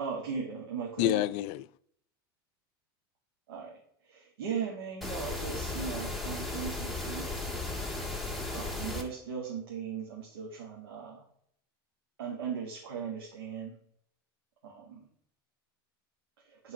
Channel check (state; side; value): normal; both; correlation 0.07